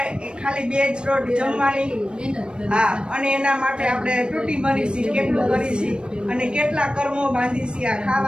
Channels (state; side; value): late; left; 0.054 ms